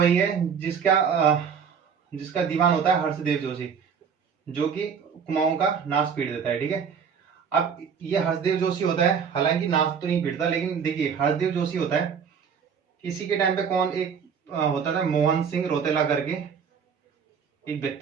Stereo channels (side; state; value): left; quieter; 6.7 dB